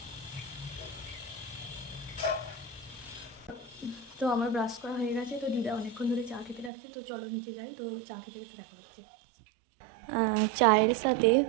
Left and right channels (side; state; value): left; drops out; at 6.7 s